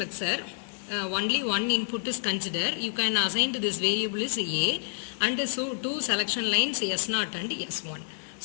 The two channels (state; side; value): silent; right; digital silence